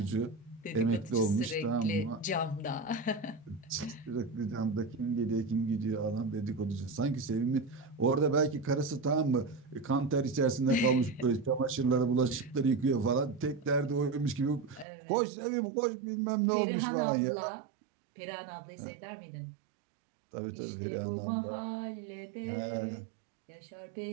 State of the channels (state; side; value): drops out; left; at 14.9 s